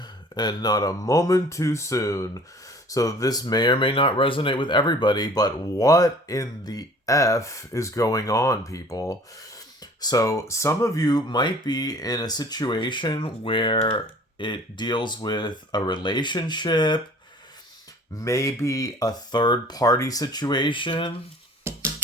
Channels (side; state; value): both; normal; correlation 0.50